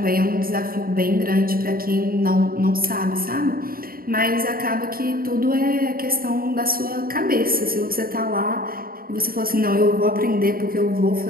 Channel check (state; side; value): late; left; 0.43 ms